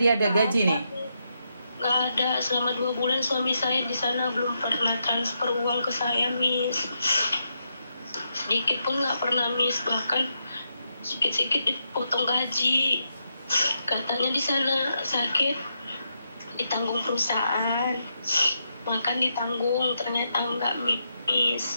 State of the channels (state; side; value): inverted; both; correlation -0.82